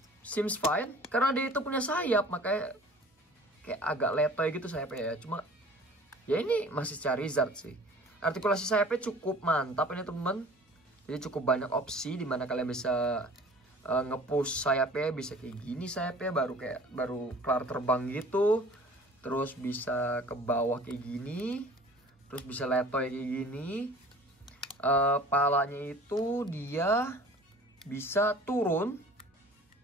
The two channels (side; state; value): both; normal; correlation 0.46